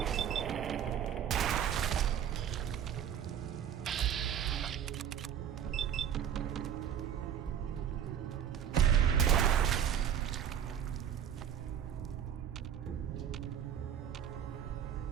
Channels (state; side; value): quieter; left; 9.2 dB